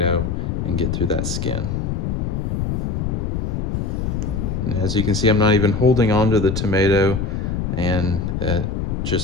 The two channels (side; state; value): left; noise; rumble, 1 dB below the sound